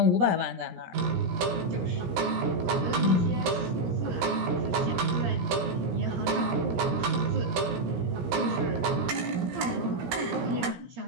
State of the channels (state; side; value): late; left; 17 ms